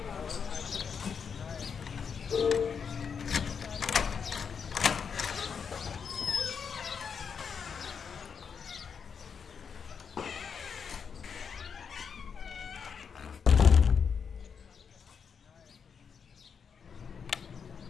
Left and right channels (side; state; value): right; quieter; 6.5 dB